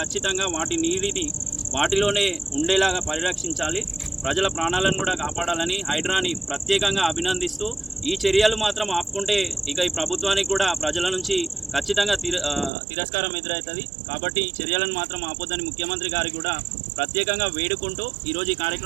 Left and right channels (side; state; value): left; drops out; at 12.7 s